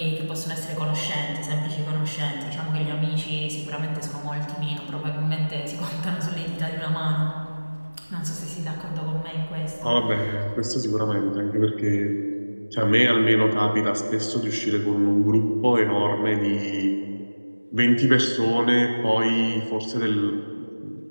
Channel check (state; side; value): inverted; both; correlation -1.00